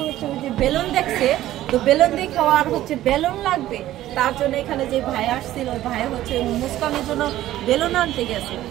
হচ্ছে ওই যে বেলুন দেখছে, তো বেলুন দেখে আর হচ্ছে বেলুন লাগবে, তার জন্য এখানে যে ভাই আসছিল, ওই ভাই হচ্ছে মুস্কানের জন্য বেলুন আনতে গেছে।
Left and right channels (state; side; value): quieter; left; 14.2 dB